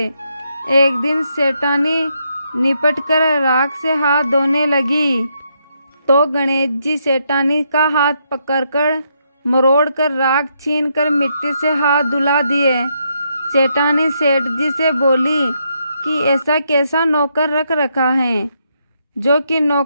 एक दिन सेठानी निपट कर राख से हाथ धोने लगी तो गणेश जी सेठानी का हाथ पकड़कर मरोड़ कर राख छीन कर मिट्टी से हाथ धुला दिए। सेठानी सेठ जी से बोली कि ऐसा कैसा नौकर रख रखा है जो कि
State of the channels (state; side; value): inverted; both; correlation -0.77